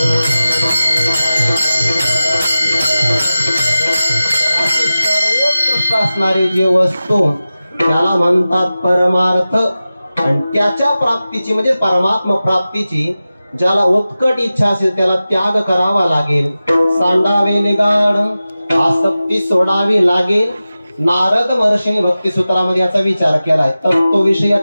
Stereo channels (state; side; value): inverted; both; correlation -0.95